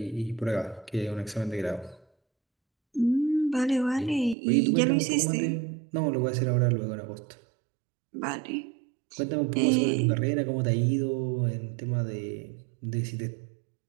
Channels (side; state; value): left; drops out; at 4.4 s